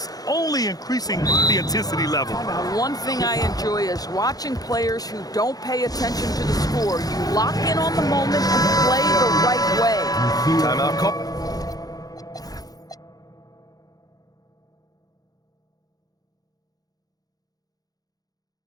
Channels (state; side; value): late; right; 0.18 ms